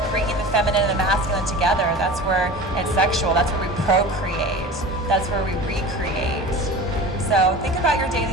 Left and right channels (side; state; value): both; normal; correlation 0.35